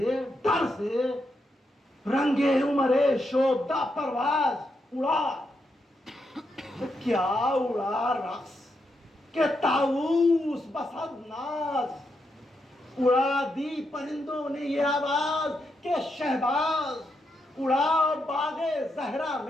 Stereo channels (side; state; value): both; normal; correlation 0.82